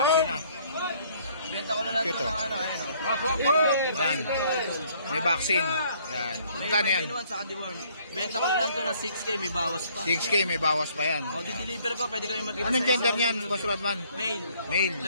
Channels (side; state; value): both; inverted; correlation -0.62